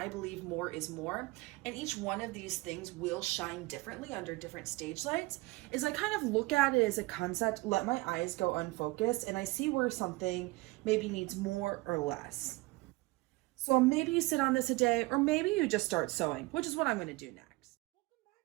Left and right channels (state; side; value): quieter; left; 22.6 dB